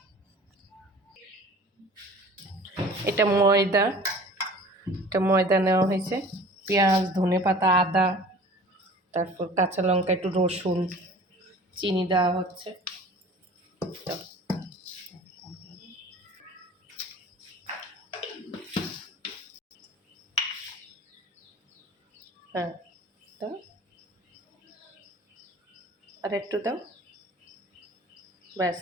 এটা ময়দা নেওয়া হয়েছে, পেঁয়াজ, ধনেপাতা, আদা, তারপর কাঁচা লঙ্কা, একটু রসুন, চিনি দেওয়া হচ্ছে। হ্যাঁ, দাও, আর একটু দাও, ব্যাস,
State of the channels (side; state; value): both; normal; correlation 0.44